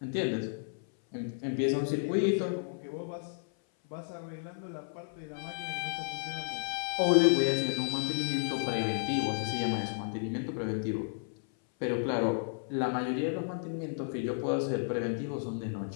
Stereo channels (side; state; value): right; silent; 56 dB below the other